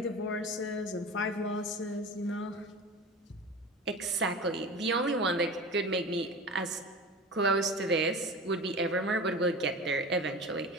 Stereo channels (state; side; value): normal; both; correlation 0.33